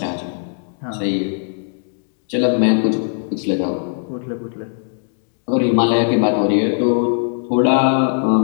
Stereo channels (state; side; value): silent; right; digital silence